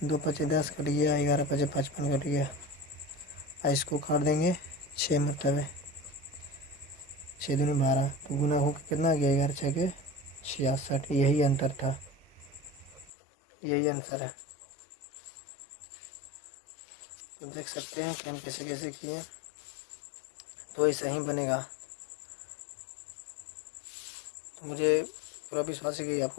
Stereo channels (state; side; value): drops out; right; at 13.1 s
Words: 2 पचे 10 कट गया, 11 पचे 55 कट गया, इसको काट देंगे 6 मतलब है, 6 दूनी 12, तो गुना होकर कितना आ गया, 11 6 के 66, यही अंतर था, यही आंसर है। तो देख सकते हैं कि हम कैसे कैसे किए, तो ऐसा ही बनेगा। तो मुझे पूरा विश्वास है कि